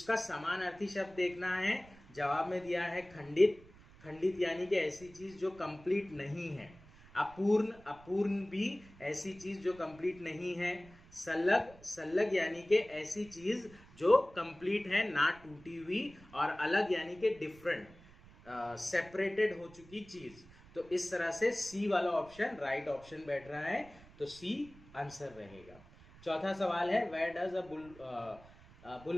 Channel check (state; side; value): noise; right; rumble, 22 dB below the sound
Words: समानार्थी शब्द देखना है। जवाब में दिया है खंडित। खंडित यानी कि ऐसी चीज जो कंप्लीट नहीं है। अपूर्ण, अपूर्ण भी ऐसी चीज जो कंप्लीट नहीं है। सल्लग, सल्लग यानी कि ऐसी चीज जो कंप्लीट है, ना टूटी हुई। और अलग यानी कि डिफरेंट, सेपरेटेड हो चुकी चीज। तो इस तरह से सी वाला ऑप्शन राइट ऑप्शन बैठ रहा है, तो सी आंसर रहेगा। चौथा सवाल है वेयर डज